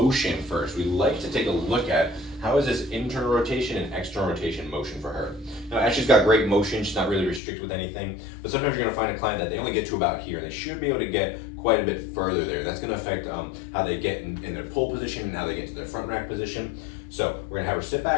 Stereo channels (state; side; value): drops out; right; at 7.4 s